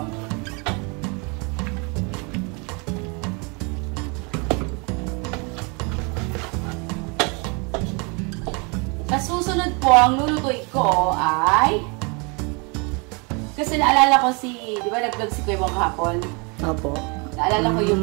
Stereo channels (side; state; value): left; quieter; 31.7 dB